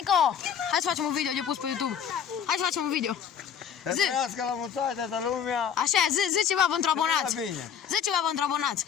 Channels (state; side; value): quieter; right; 8.1 dB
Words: că. Hai să facem un video de pus pe YouTube. Hai să facem un video. Să trăiască la mulți ani toată lumea. Așa, zi ceva pentru abonați. Zi ceva pentru abonați.